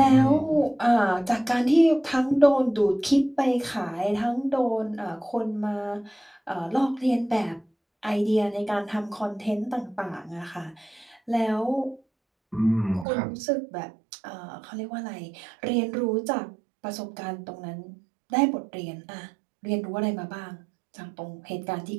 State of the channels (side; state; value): left; drops out; at 13.1 s